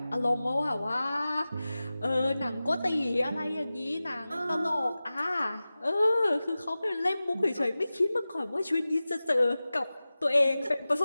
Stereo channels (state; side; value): inverted; both; correlation -0.96